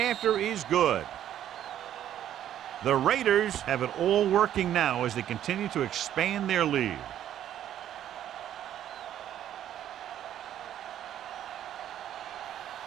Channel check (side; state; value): left; quieter; 11.1 dB